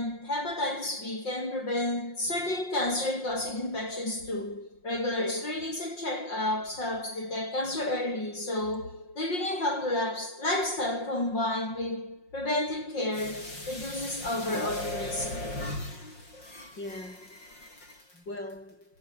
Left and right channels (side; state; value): right; late; 5.6 ms